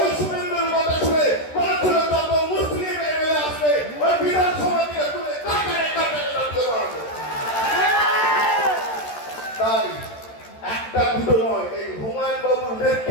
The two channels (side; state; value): right; late; 13 ms